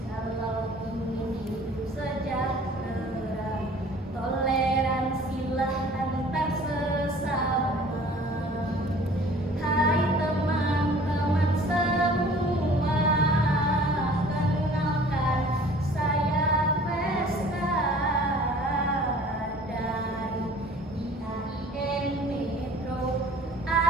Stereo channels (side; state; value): both; normal; correlation 0.49